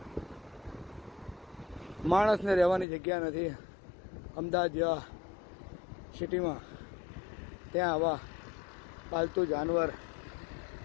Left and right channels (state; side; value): drops out; right; at 2.9 s